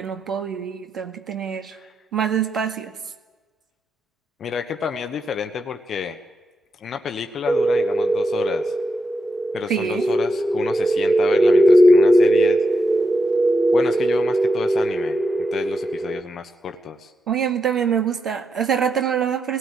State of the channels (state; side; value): normal; both; correlation 0.85